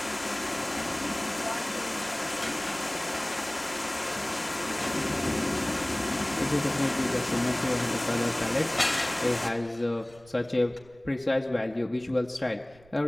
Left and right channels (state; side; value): noise; right; rumble, 26 dB below the sound